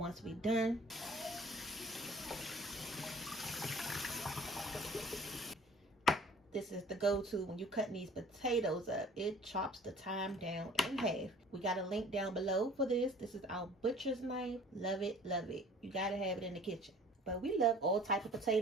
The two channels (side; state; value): both; normal; correlation 0.50